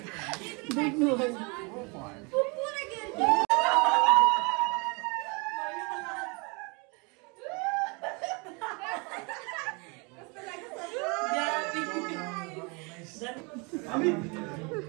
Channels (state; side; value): quieter; left; 30.8 dB